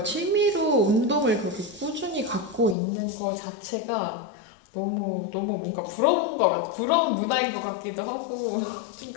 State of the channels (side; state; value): right; drops out; at 2.8 s